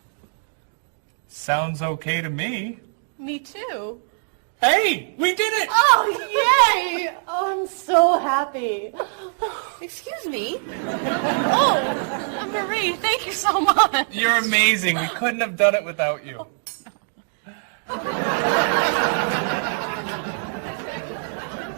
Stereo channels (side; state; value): left; silent; digital silence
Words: Sounds okay to me. Me too. Hey, we did it! Oh, yay! Oh, I'm so happy. happy. Excuse me? Oh, Marie, thank you so much. You're amazing. We couldn't have done it without you.